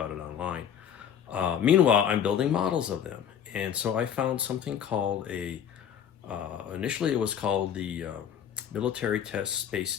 it online. Meanwhile, I'm building models of them. And so I found something called initially it was called the Military Test Space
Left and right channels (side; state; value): right; quieter; 8.8 dB